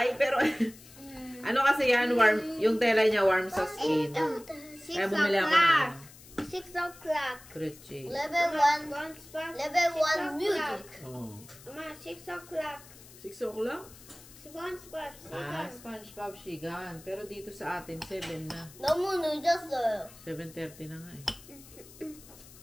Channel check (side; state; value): left; noise; hiss, 20 dB below the sound